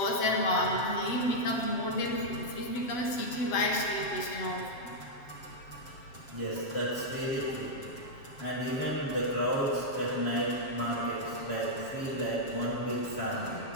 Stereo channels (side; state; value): right; late; 7.4 ms